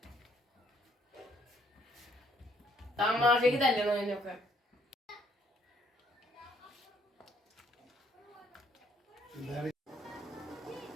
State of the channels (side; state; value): both; normal; correlation 0.66